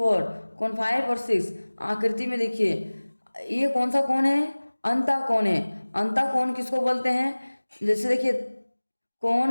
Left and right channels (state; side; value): inverted; both; correlation -1.00